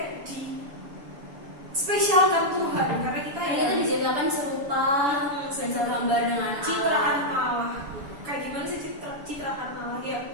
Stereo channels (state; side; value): late; left; 7.1 ms